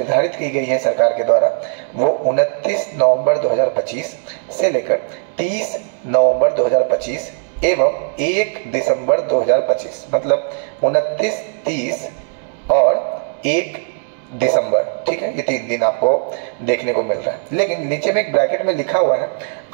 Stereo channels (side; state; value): left; silent; 57 dB below the other